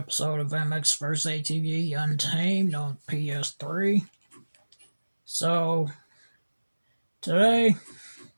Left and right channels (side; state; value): both; inverted; correlation -1.00